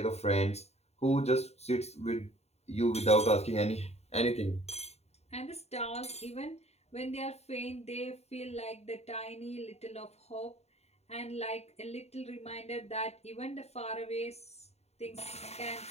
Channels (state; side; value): late; right; 0.31 ms